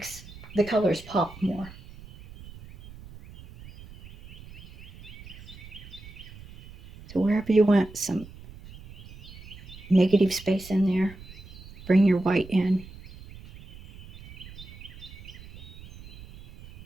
the colors pop more. So wherever you want some negative space in there, bring your white in.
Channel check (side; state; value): right; noise; rumble, 17 dB below the sound